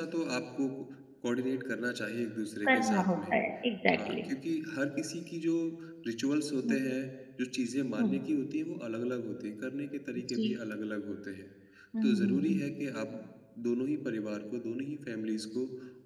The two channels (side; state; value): both; identical; correlation 1.00